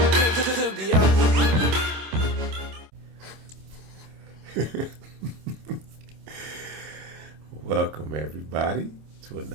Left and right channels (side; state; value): left; late; 26 ms